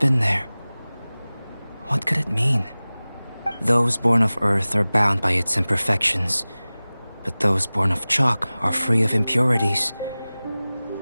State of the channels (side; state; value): both; inverted; correlation -0.98